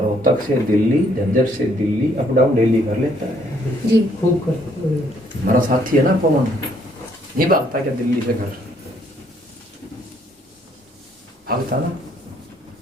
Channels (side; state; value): both; normal; correlation 0.67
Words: से दिल्ली, झज्जर से दिल्ली, अप डाउन डेली कर लेता है। जी खूब कर। हमारा साथी है ना पवन, नहीं भागता क्या दिल्ली से घर? भागता ना।